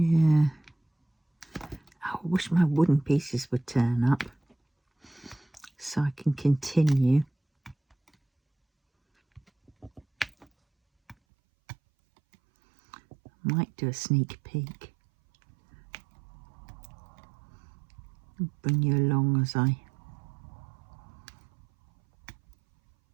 Oh, I wish my wooden pieces would turn up so I can continue. Might do a sneak peek. I'll bring you along as I...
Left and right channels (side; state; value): left; drops out; at 11.2 s